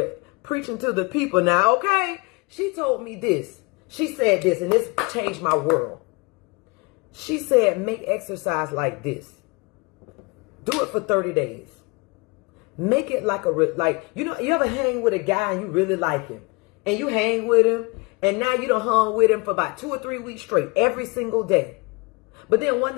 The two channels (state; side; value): quieter; right; 28.0 dB